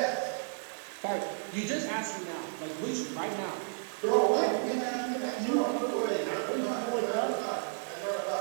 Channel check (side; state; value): left; silent; digital silence